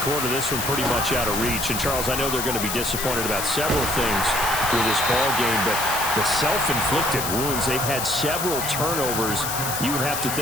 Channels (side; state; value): left; noise; hiss, 3 dB below the sound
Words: quarter, this one pretty much out of reach. And, Charles, I know they're going to be disappointed about several things with this ball game, but the self-inflicted wounds, they've had several turnovers. You would have to